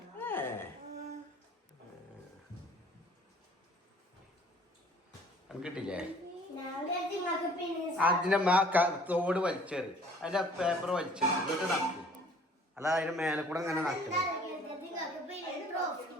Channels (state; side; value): normal; both; correlation 0.54